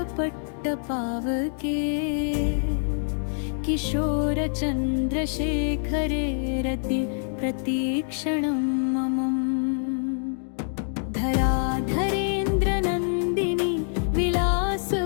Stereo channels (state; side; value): silent; right; digital silence